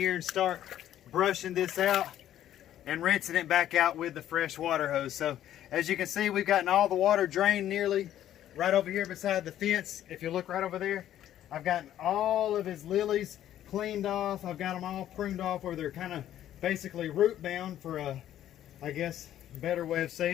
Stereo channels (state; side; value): quieter; right; 11.8 dB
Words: and start brushing this out and rinsing it back out with the fresh water hose. So as you can see, we've gotten all the water drained nearly right over here beside the fence. If you look right over there, I've gotten all of his lilies cleaned off. I've got them all pruned off where they're kind of basically root bound, for a, I guess, better way of